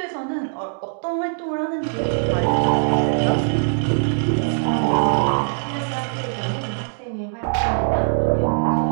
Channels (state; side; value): silent; left; digital silence